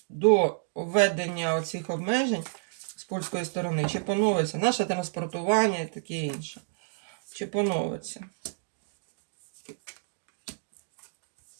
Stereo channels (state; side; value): silent; left; digital silence